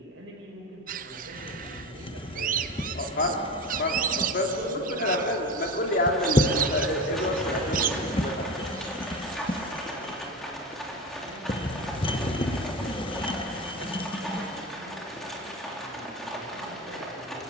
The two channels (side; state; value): both; normal; correlation 0.26